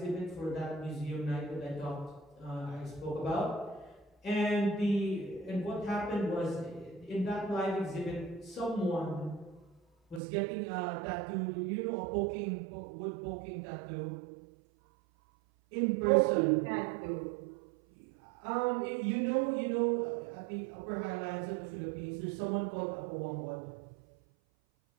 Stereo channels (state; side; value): drops out; left; at 10.2 s